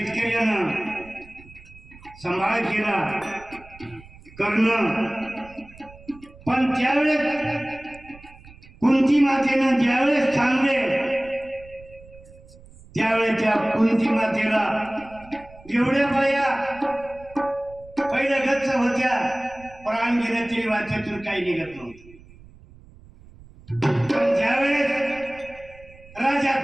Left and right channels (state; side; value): noise; right; rumble, 22 dB below the sound